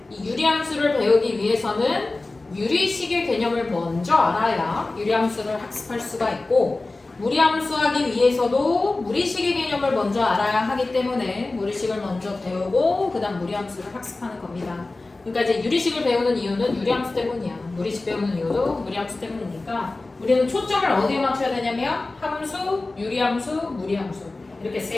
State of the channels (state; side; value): quieter; right; 3.2 dB